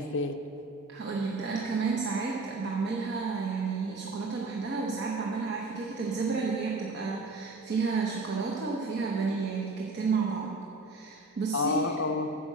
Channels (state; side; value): quieter; left; 3.0 dB